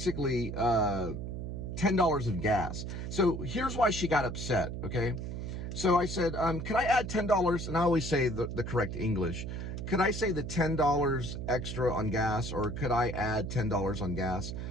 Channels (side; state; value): right; noise; hum, 5 dB below the sound